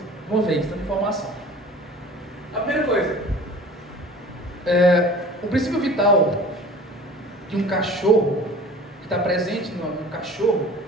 uma vez, tanta informação. A primeira coisa, o princípio vital de um cachorro, que está presente no cachorro,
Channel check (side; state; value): both; normal; correlation 0.43